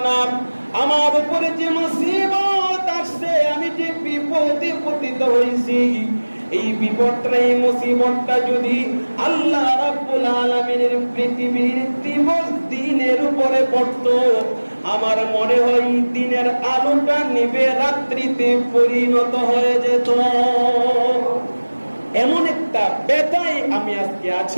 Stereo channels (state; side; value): inverted; both; correlation -1.00